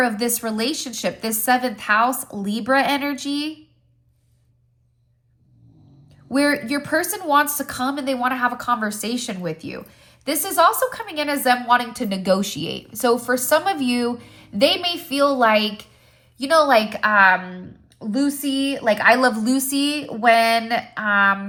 of this relationship, this 7th house Libra energy, where your person wants to come and they want to have a conversation with you. This is also coming in as them wanting to negotiate. So for some of you, they may feel like, Lucy, like I Love Lucy, when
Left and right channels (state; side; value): identical; both; correlation 1.00